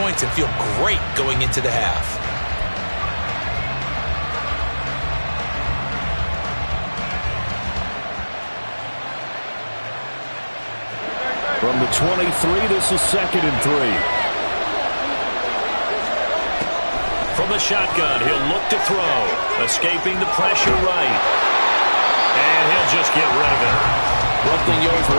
and feel great going into the half. From the 23, this is 2nd and 3. From the shotgun, he'll look to throw. Escaping the pressure right. And he'll just get rid of it. One thing you always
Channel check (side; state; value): both; inverted; correlation -1.00